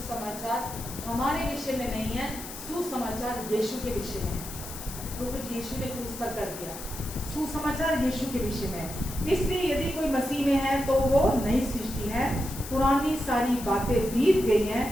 हमारे विषय में नहीं है, सुसमाचार यीशु के विषय में है, जो कुछ यीशु ने क्रूस पर कर दिया। सुसमाचार यीशु के विषय में है। इसलिए यदि कोई मसीह में है तो वो नई सृष्टि है, पुरानी सारी बातें बीत गई हैं,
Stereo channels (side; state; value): left; noise; hiss, 11 dB below the sound